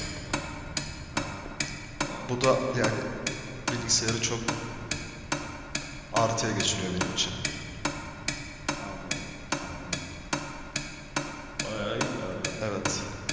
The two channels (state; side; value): identical; both; correlation 1.00